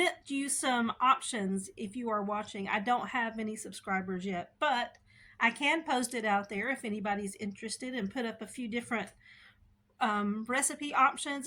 you some options if you are watching. I don't have any subscribers yet, but I can post it out there if anybody's interested, and put up a few different recipe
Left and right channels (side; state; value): both; identical; correlation 1.00